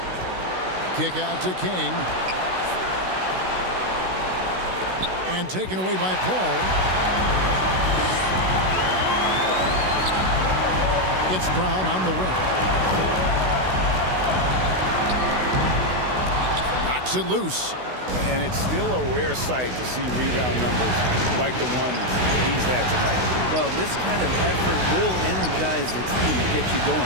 Kick out to King. And taken away by Paul. It's Brown on the wing. Knocks it loose. And it's still a rare sight to see rebound numbers like the ones he's had tonight. Well, this kind of effort will energize the team and get you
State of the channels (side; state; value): left; late; 16 ms